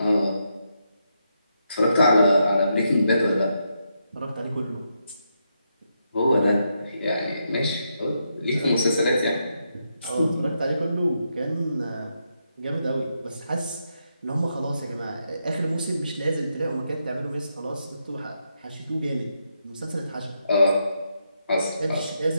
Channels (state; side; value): inverted; both; correlation -0.82